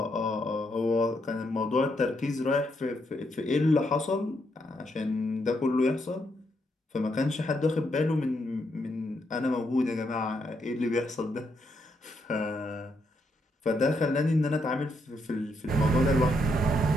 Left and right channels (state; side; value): normal; both; correlation 0.78